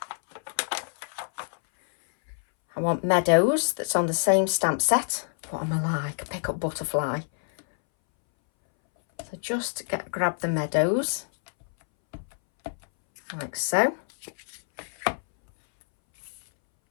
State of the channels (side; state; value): right; silent; 60 dB below the other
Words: I want Meadows that's on the same stamp set. What am I like? Pick up butterfly. So just grab the Meadows. Like so.